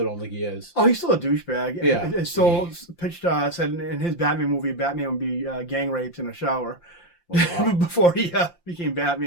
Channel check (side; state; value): right; late; 5.8 ms